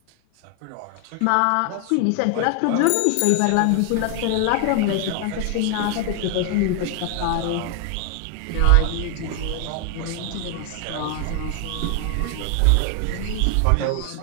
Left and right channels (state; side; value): different; both; correlation 0.00